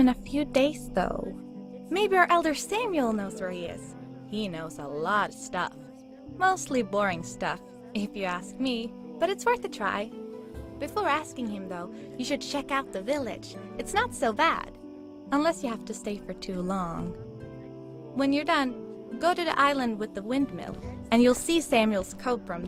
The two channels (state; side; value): identical; both; correlation 1.00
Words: in a few days, though. Maybe our elder Samuel knows where he is. He knows a lot of stuff. Mostly boring stuff, if you ask me, but it's worth a try. Before asking him, though, you should check out the village. It's not so bad, unless you have to stay for too long. When you're done, go to the island with the windmill, and you'll see Samuel's cove from